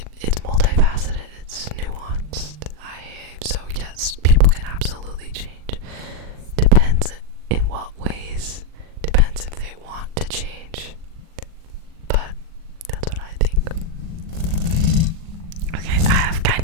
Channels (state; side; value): late; left; 39 ms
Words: it's multifaceted, it's nuanced. So yes, people can absolutely change. Depends in what ways, depends if they want to change. But that's what I think. Okay, I have kind